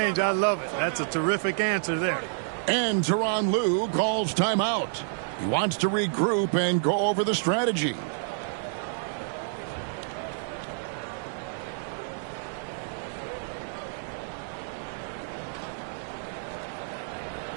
I love it. That's a terrific answer there. And Tyronn Lue calls timeout. He wants to regroup and go over the strategy.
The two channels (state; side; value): silent; left; digital silence